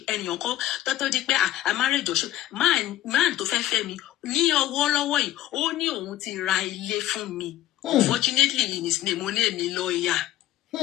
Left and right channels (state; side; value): quieter; right; 13.9 dB